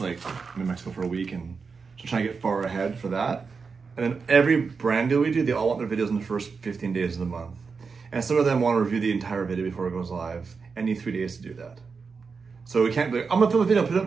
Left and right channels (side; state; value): left; quieter; 5.1 dB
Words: I'm in Mexico for a week and so trying to get far ahead for that. And then every brand deal we do, they all want their videos in the first 15 days of the month. And some of them want to review the entire video before it goes live and need 3 days to do that. So we can't be like, I'm gonna film a video, put it up